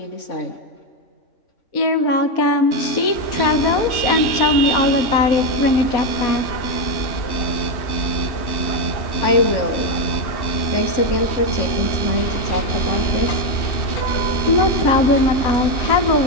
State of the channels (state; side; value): late; right; 3.1 ms